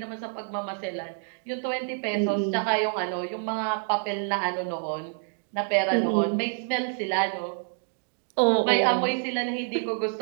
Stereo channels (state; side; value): silent; left; 60 dB below the other